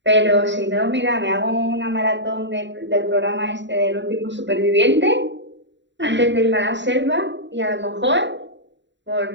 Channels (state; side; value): late; left; 0.52 ms